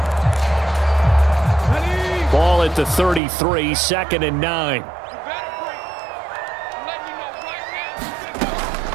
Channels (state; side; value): drops out; left; at 3.2 s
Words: Ball at the 33, 2nd and 9.